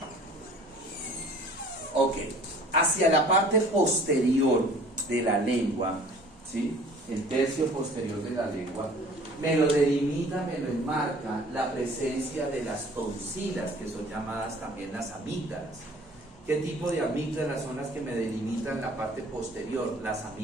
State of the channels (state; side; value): normal; both; correlation 0.50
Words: Ok, hacia la parte posterior de la lengua, ¿sí? El tercio posterior de la lengua, me lo delimita, me lo enmarca la presencia de las tonsilas, que son llamadas también las amígdalas. ¿Qué tipo de amígdalas son las que me delimitan la parte posterior? Las